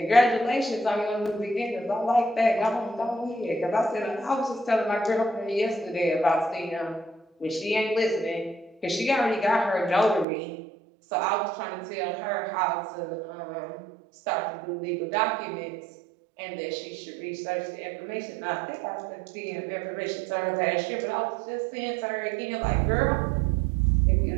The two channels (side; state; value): left; drops out; at 10.2 s